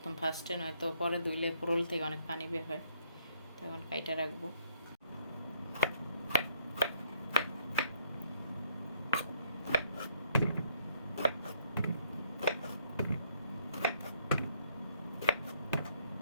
ফার্স্টে নয়তো পরে ধুইলে ফোড়ল থেকে অনেক পানি বের হয়, তখন কাইটা রাখবো।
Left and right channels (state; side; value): inverted; both; correlation -0.69